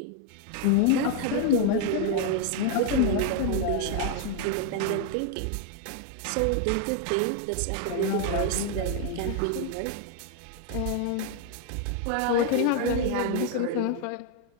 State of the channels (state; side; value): different; both; correlation 0.00